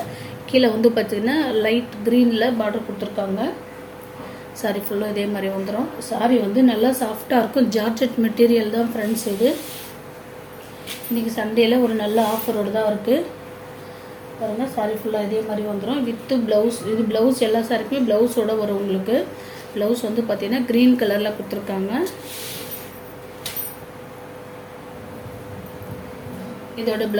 கீழே வந்து பார்த்திங்கன்னா லைட் க்ரீனில் பார்டர் கொடுத்துருக்காங்க. சாரீ ஃபுல்லாக இதே மாதிரி வந்துடும். சாரீ வந்து நல்லா சாஃப்டாக இருக்கும். ஜார்ஜெட் மெட்டீரியல் தான் ஃப்ரெண்ட்ஸ். இது இன்றைக்கி சண்டேயில் ஒரு நல்ல ஆஃபரோடு தான் இருக்குது பாருங்கள். சாரீ ஃபுல்லாக இதே மாதிரி வந்துடும் வித்து ப்ளவுஸ். இது ப்ளவுஸ் எல்லா சாரிக்குமே ப்ளவுஸோடு வரும் உங்களுக்கு. ப்ளவுஸ் வந்து பார்த்திங்கன்னா க்ரீன் கலரில் கொடுத்துருக்காங்க. இதோட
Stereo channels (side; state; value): both; identical; correlation 1.00